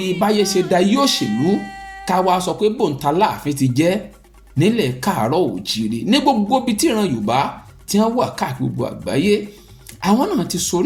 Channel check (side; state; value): both; identical; correlation 1.00